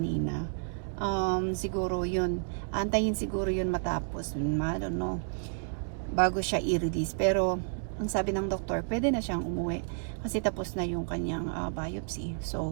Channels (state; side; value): silent; left; digital silence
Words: Siguro yun. Antayin siguro yun matapos. I don't know. Bago siya i-release. Pero ang sabi ng doktor, pwede na siyang umuwi kasi tapos na yung kanyang biopsy.